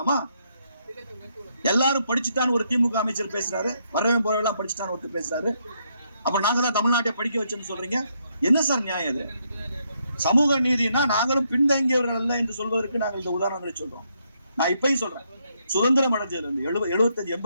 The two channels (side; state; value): both; inverted; correlation -0.76